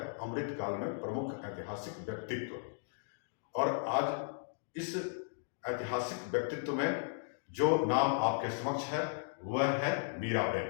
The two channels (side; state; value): right; silent; digital silence